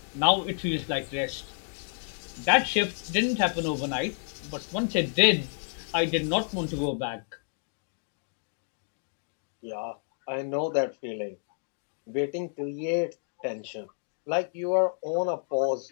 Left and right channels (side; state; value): right; silent; digital silence